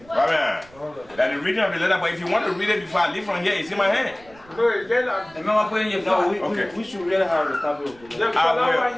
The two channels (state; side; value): noise; right; rumble, 25 dB below the sound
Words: Right. That's the reading of the letter, but if you want to read it before I leave from here, it's in my hand. Okay. We should really have a copy of the letter.